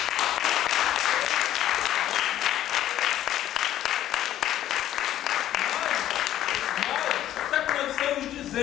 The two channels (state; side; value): quieter; right; 12.3 dB